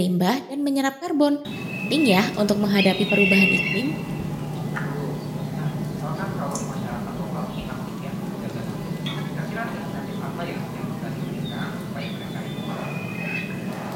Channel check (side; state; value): both; identical; correlation 1.00